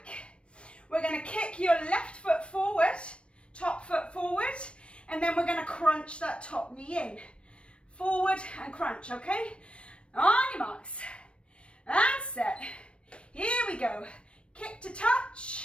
We're going to kick your left foot forward, top foot forward, and then we're going to crunch that top knee in. Forward and crunch, okay? On your marks. And set. Here we go. Kick to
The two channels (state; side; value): late; right; 0.059 ms